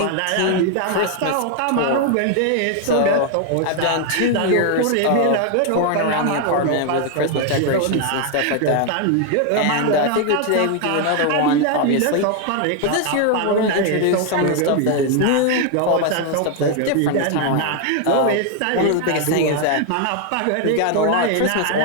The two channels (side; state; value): both; different; correlation 0.00